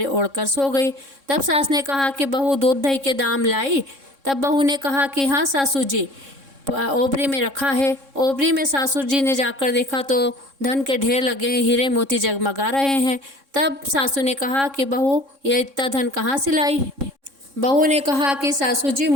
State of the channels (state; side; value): late; left; 3.6 ms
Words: ओढ़कर सो गई। तब सास ने कहा कि बहू दूध दही के दाम लाई? तब बहू ने कहा कि हाँ सासू जी, ओबरी में रखा है। ओबरी में सासू जी ने जाकर देखा तो धन के ढेर लगे हैं, हीरे मोती जगमगा रहे हैं। तब सासू ने कहा कि बहू ये इतना धन कहाँ से लाई? बहू ने कहा कि सासू जी,